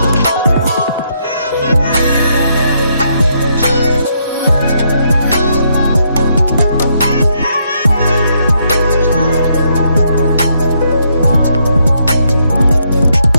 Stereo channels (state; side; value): inverted; both; correlation -0.75